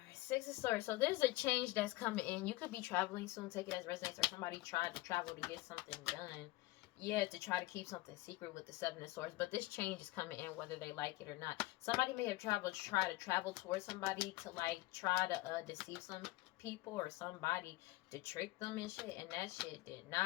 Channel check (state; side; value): quieter; right; 19.9 dB